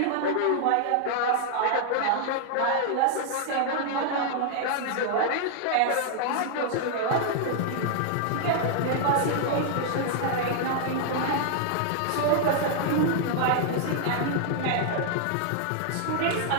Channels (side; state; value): both; different; correlation -0.01